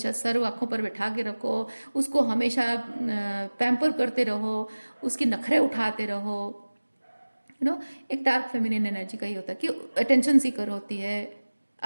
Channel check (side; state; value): both; inverted; correlation -1.00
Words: सर आंखों पर बैठा के रखो, उसको हमेशा पैम्पर करते रहो, उसकी नखरे उठाते रहो। एक डार्क फेमिनिन एनर्जी का ही होता है कि अटेंशन सीकर होती है,